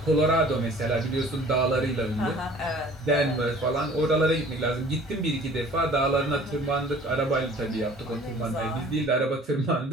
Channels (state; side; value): normal; both; correlation 0.50